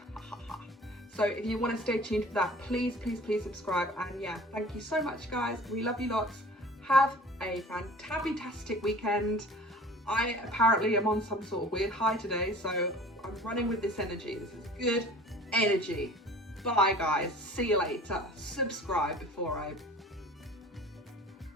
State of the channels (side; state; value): both; normal; correlation 0.45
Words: So if you want to stay tuned for that, please subscribe, and yeah, thank you so much, guys. We love you lots. Have a fantastic weekend. I apparently am on some sort of weird high today, so I'm running with this energy. This is good energy. Bye, guys. See you later. Subscribe before I